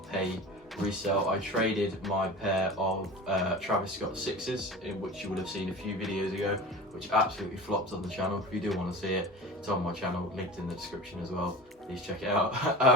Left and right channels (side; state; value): both; normal; correlation 0.35